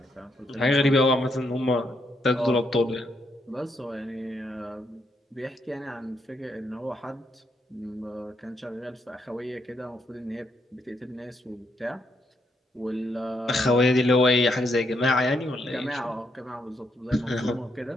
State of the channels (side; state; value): both; normal; correlation 0.77